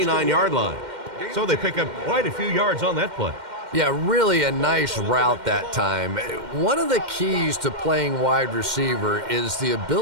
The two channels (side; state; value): left; late; 2.1 ms